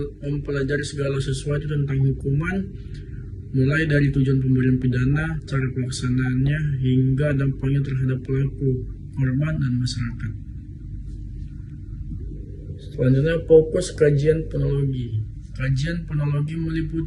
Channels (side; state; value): both; identical; correlation 1.00